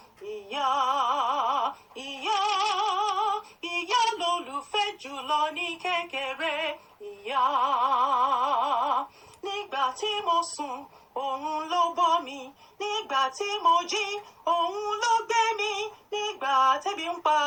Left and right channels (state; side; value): identical; both; correlation 1.00